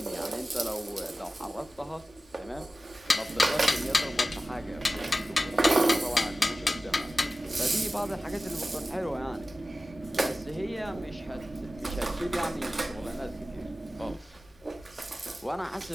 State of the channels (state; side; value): normal; both; correlation 0.95